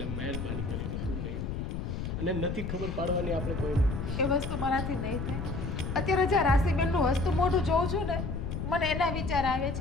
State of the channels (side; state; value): left; noise; rumble, 4 dB below the sound